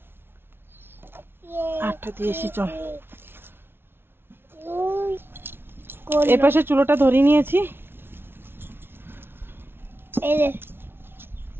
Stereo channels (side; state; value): left; late; 0.11 ms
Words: হাতটা দিয়েছি। চল এই পাশে চুলোটা ধরিয়ে নিয়েছি। এই যে